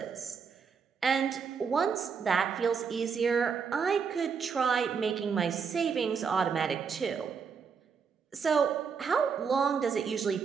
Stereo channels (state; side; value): quieter; left; 6.0 dB